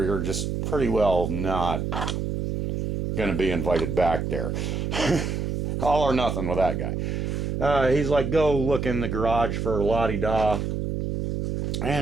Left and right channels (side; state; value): right; noise; hum, 2 dB below the sound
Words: you're just pretty well not going to be invited back there. All or nothing with that guy. He's like, go look in the garage for la-di-da.